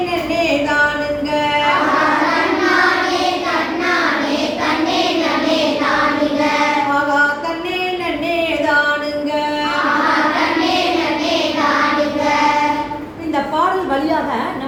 நன்னே தானுங்க, தன்னானே தன்னானே தன்னே நமே தானுங்க, ஆகா தன்னே நன்னே தானுங்க. தன்னே நமே தானுங்க. இந்த பாடல் வழியாக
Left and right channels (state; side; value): identical; both; correlation 1.00